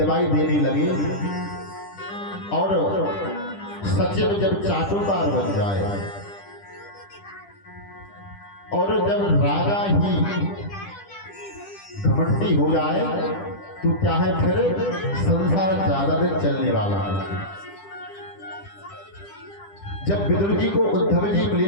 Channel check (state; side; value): late; right; 10 ms